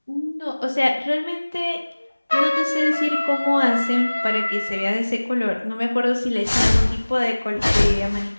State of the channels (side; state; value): both; inverted; correlation -1.00